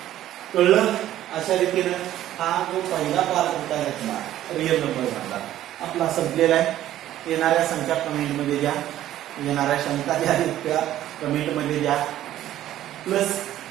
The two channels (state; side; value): quieter; left; 12.9 dB